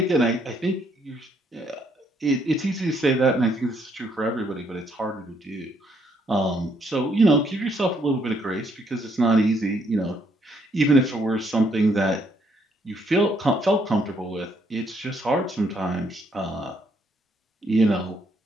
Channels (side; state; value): both; normal; correlation 0.71